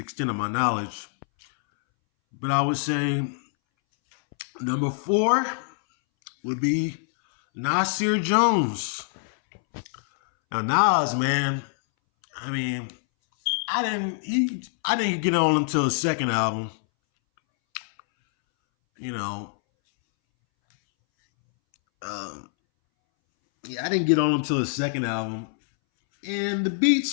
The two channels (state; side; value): silent; right; 62 dB below the other